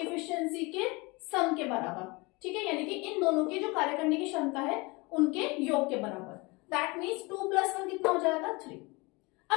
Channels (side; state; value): right; quieter; 25.9 dB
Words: के सम के बराबर। ठीक है, यानी कि इन दोनों की जो कार्य करने की क्षमता है उनके योग के बराबर। दैट मीन्स 2 + 1 कितना हो जाएगा, 3।